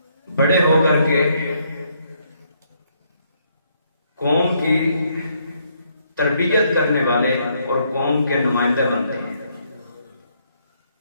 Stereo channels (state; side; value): inverted; both; correlation -0.72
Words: بڑے ہو کر کے قوم کی تربیت کرنے والے اور قوم کے نمائندے بنتے ہیں۔